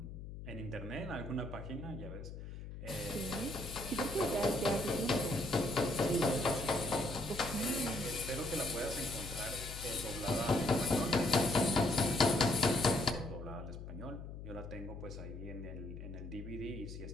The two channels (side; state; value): left; noise; hum, 10 dB below the sound